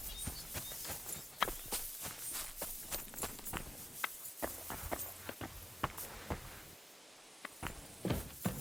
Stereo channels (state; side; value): normal; both; correlation 0.96